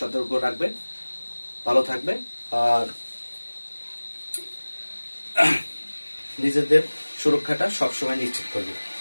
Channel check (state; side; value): inverted; both; correlation -1.00